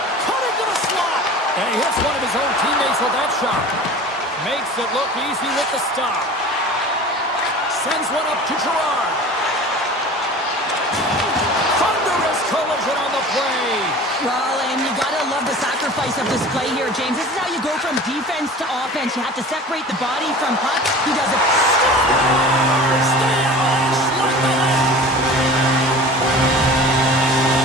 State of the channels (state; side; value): normal; both; correlation 0.39